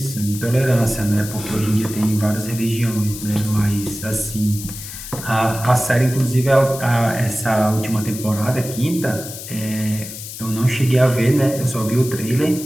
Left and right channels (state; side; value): noise; left; hiss, 11 dB below the sound